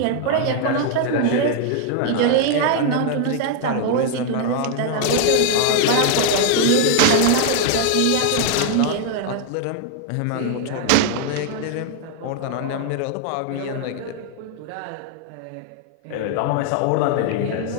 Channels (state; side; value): different; both; correlation 0.00